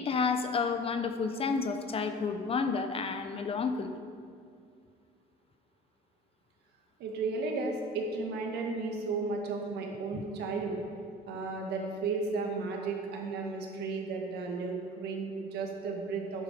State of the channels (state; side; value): normal; both; correlation 0.40